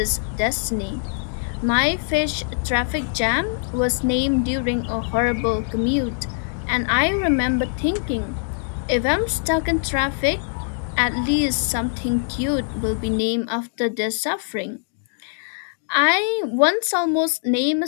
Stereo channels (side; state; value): right; silent; digital silence